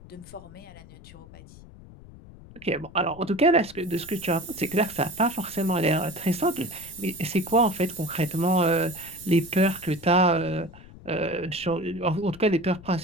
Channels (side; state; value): left; noise; rumble, 19 dB below the sound